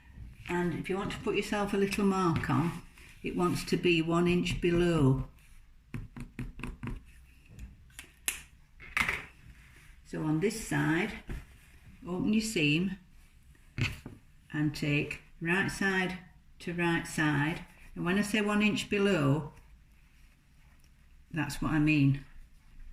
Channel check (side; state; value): both; identical; correlation 1.00